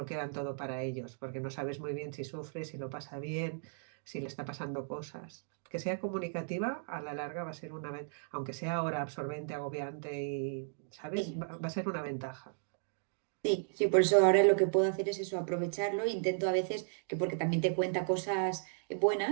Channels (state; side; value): silent; left; digital silence